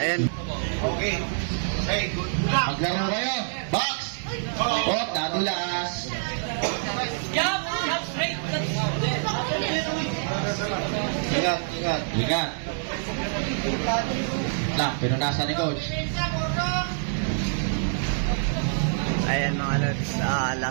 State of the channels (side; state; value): left; silent; digital silence